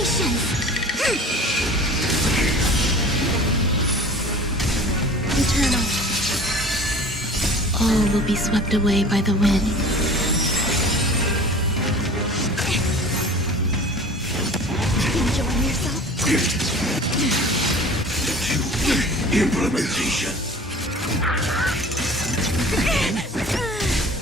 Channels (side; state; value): both; normal; correlation 0.43